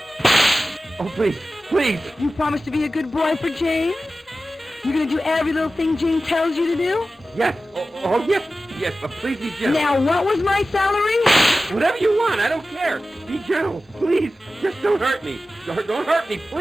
Oh, please, please. You promise to be a good boy for Jane? You're gonna do every little thing Jane tells you to do? Yes. Oh, yes. Yes, but please be gentle. Now, what was my salary? Whatever you want, I don't care. Be gentle, please. Just don't hurt me. Don't hurt me,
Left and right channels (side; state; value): both; normal; correlation 0.94